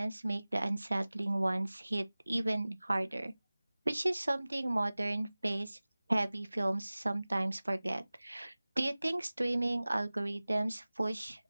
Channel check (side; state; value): both; inverted; correlation -0.99